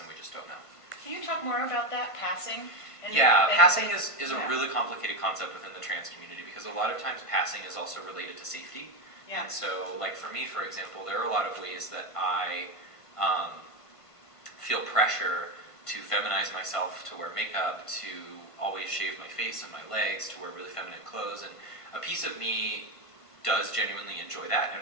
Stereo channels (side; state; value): right; late; 1.5 ms